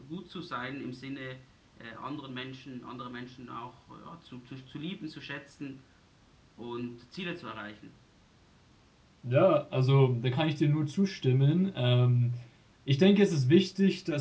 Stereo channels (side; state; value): both; identical; correlation 1.00